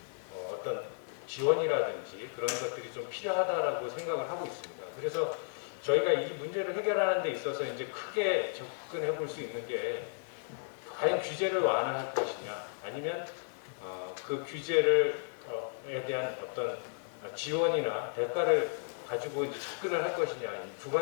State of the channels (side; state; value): right; silent; digital silence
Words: 어떤 지원이라든지 그런 것들이 좀 필요하다라고 생각을 하고 있습니다. 그래서 저희가 이 문제를 해결하는 데 있어서 이제 크게 접근해 볼 수 있는 게 과연 규제를 완화할 것이냐, 아니면 그 규제를 에 대한 어떤 지원이나 대가를 가지고 이제 접근을 할 것이냐, 두